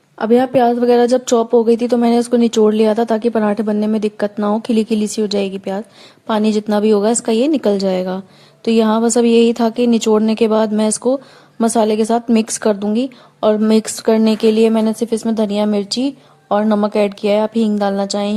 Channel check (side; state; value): both; identical; correlation 1.00